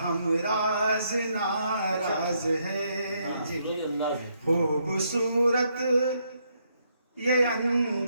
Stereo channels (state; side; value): inverted; both; correlation -0.75